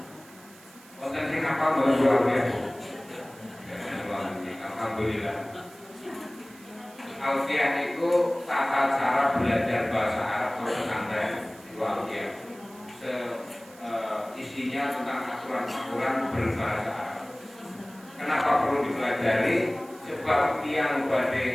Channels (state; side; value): noise; right; hiss, 23 dB below the sound